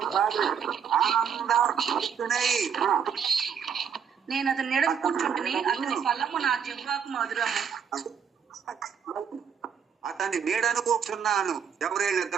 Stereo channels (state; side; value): quieter; left; 7.4 dB